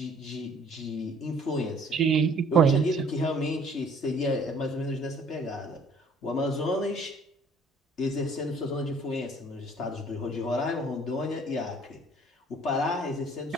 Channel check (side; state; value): both; normal; correlation 0.57